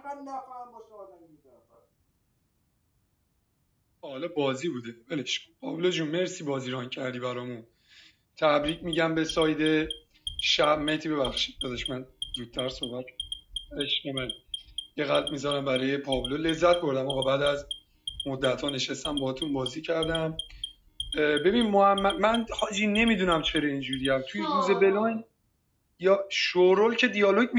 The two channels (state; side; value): identical; both; correlation 1.00